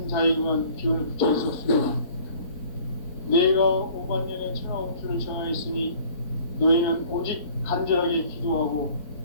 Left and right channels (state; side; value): late; right; 4.1 ms